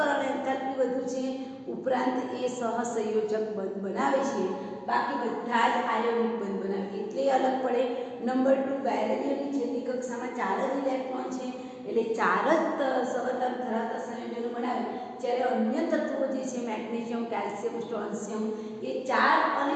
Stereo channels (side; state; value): both; identical; correlation 1.00